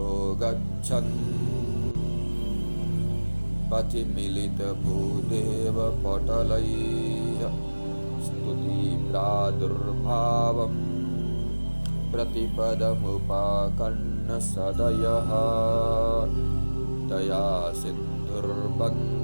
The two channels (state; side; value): inverted; both; correlation -1.00